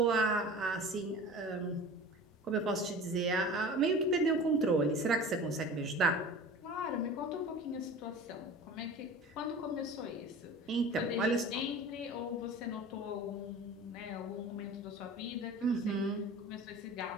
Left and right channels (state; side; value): normal; both; correlation 0.38